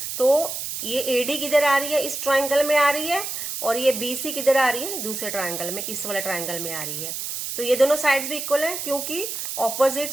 तो ये एडी किधर आ रही है? इस ट्रायंगल में आ रही है. और ये बीसी किधर आ रही है? दूसरे ट्रायंगल में, इस वाले ट्रायंगल में आ रही है. तो ये दोनों साइड्स भी इक्वल है क्योंकि opposite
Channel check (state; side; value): noise; right; hiss, 5 dB below the sound